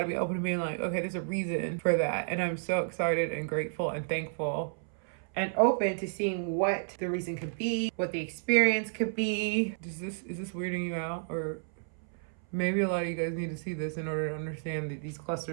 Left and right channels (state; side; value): silent; left; 57 dB below the other